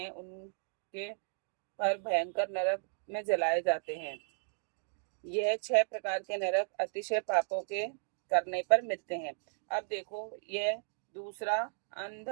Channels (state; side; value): silent; left; digital silence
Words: उनके पर भयंकर नरक में जलाए जाते हैं। यह 6 प्रकार के नरक अतिशय पापों के करने पर मिलते हैं। अब देखो, यह दूसरा